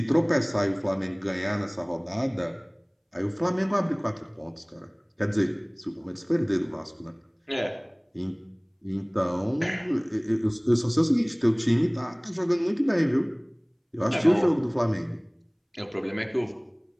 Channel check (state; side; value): identical; both; correlation 1.00